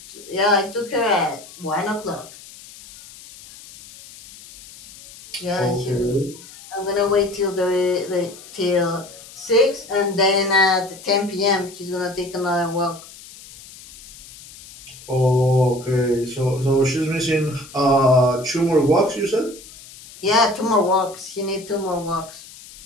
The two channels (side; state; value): left; noise; hiss, 19 dB below the sound